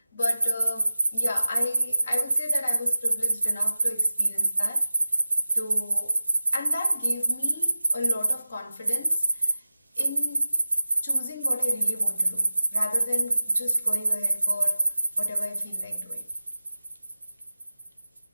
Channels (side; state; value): both; inverted; correlation -0.95